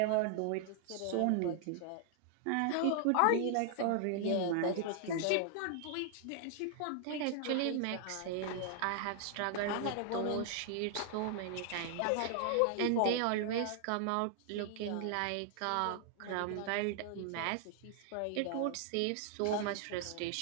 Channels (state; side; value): different; both; correlation 0.00